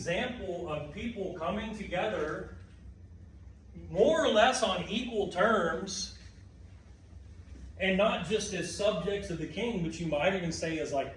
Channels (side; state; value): both; identical; correlation 1.00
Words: of people coming together more or less on equal terms, and not just as subjects of the king, but you might even say as